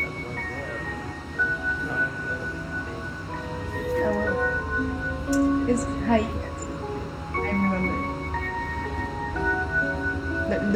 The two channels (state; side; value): identical; both; correlation 1.00